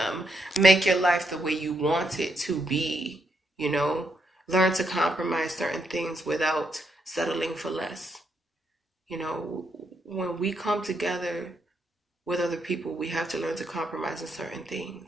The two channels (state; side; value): normal; both; correlation 0.79